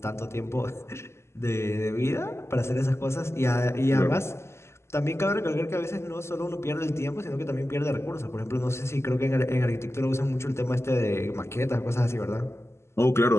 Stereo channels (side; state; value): right; late; 0.13 ms